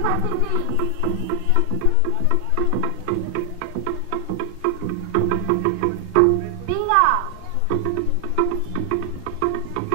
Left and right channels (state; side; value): different; both; correlation 0.00